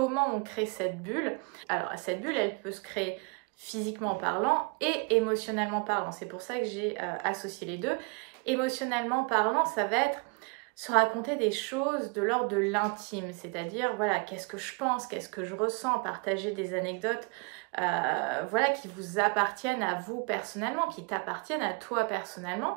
on crée cette bulle? Alors, cette bulle, elle peut se créer physiquement parlant et émotionnellement parlant. C'est pour ça que j'ai associé les deux. Émotionnellement parlant, ça va être se raconter des choses de l'ordre de l'intime, c'est-à-dire, voilà, qu'est-ce que je pense, qu'est-ce que je ressens, partager des anecdotes, voilà, qui vous appartiennent à vous personnellement, qui t'appartiennent à toi personnellement,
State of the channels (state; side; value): quieter; left; 32.8 dB